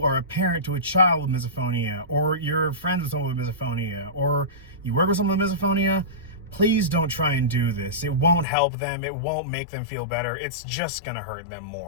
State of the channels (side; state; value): right; drops out; at 8.5 s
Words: are a parent to a child with misophonia, or you're friends with someone with misophonia, or you work with someone with misophonia, please don't try and do this. It won't help them. It won't make them feel better. It's just going to hurt them